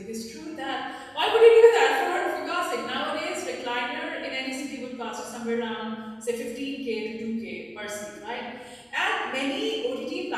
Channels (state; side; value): identical; both; correlation 1.00